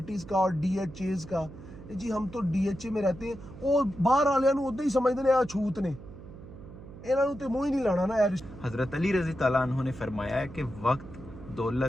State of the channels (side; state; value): right; noise; hum, 15 dB below the sound